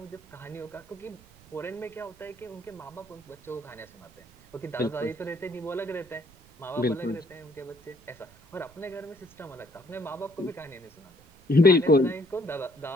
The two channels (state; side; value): noise; right; rumble, 26 dB below the sound